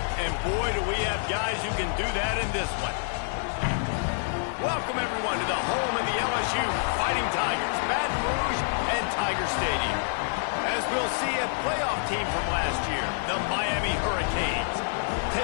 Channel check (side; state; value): right; silent; 60 dB below the other